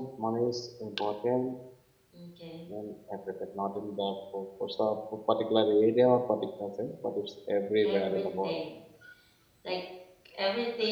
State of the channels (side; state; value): both; identical; correlation 1.00